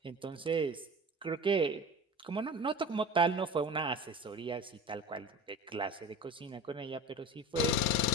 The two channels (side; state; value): both; normal; correlation 0.35